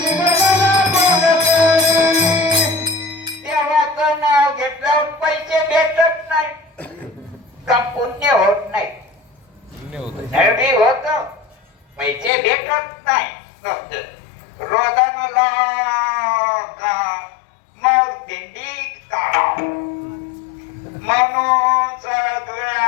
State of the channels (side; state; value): right; drops out; at 12.3 s